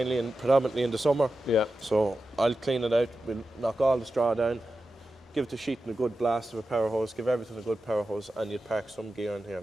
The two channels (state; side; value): normal; both; correlation 0.92